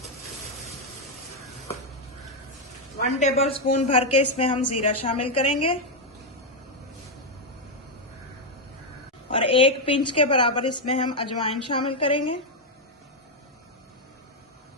वन टेबल स्पून भर के इसमें हम जीरा शामिल करेंगे और 1 पिंच के बराबर इसमें हम अजवाइन शामिल करेंगे।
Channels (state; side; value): normal; both; correlation 0.03